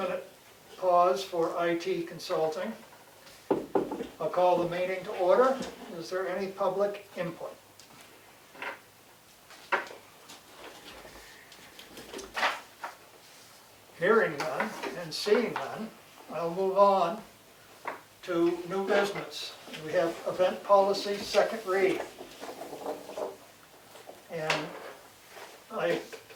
pause for IT consulting. I'll call the meeting to order. Is there any public input? Hearing none and seeing none, I'll move on to new business. We have event policy, second read. And I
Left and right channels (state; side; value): identical; both; correlation 1.00